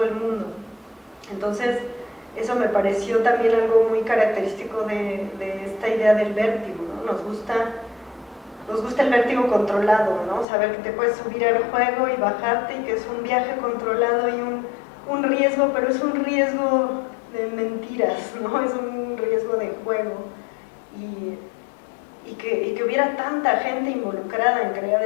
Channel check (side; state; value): right; drops out; at 10.5 s